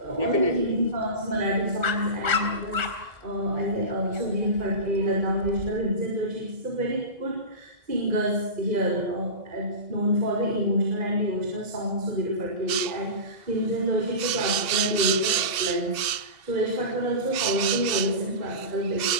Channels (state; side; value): late; left; 2.0 ms